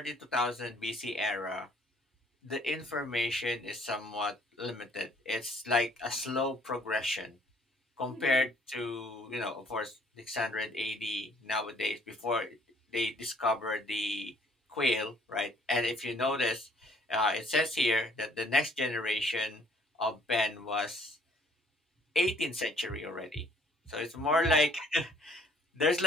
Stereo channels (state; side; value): normal; both; correlation 0.60